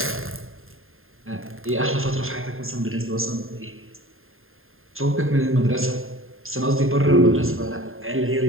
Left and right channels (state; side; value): late; left; 0.61 ms